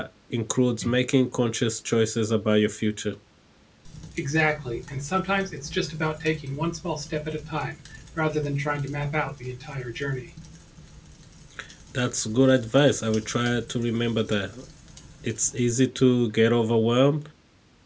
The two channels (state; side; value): identical; both; correlation 1.00